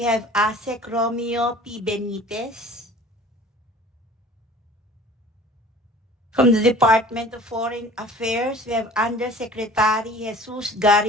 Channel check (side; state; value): both; normal; correlation 0.46